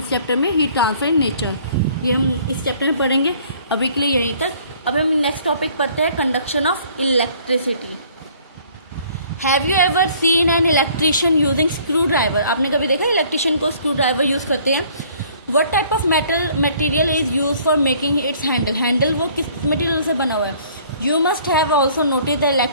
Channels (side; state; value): both; inverted; correlation -0.57